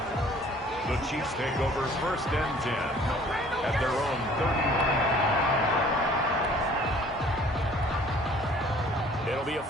The Chiefs take over 1st and 10 at their own 30. It'll be a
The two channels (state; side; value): normal; both; correlation 0.54